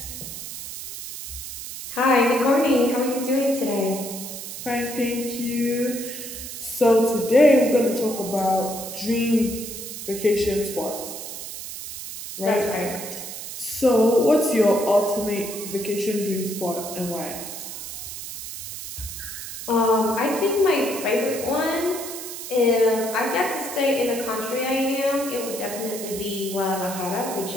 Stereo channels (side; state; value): right; noise; hiss, 9 dB below the sound